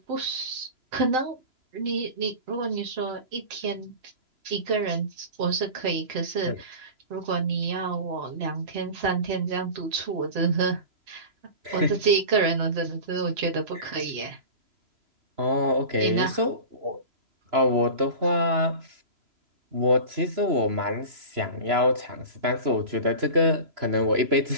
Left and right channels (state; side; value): late; left; 3.0 ms